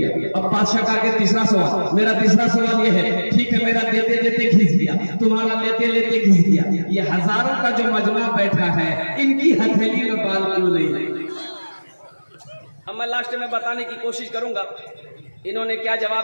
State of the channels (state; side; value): inverted; both; correlation -1.00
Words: अब बादशाह का आगे तीसरा सवाल, मेरा तीसरा सवाल ये है, ठीक है मेरा देते देते घिस गया, तुम्हारा लेते लेते घिस गया, ये हजारों का जो मजमा बैठा है इनकी हथेली में बाल क्यों नहीं है? अब मैं लास्ट में बताने की कोशिश करूंगा इन्होंने क्या